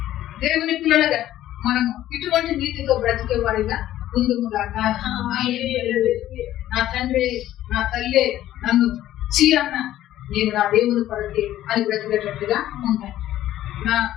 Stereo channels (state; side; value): quieter; right; 13.3 dB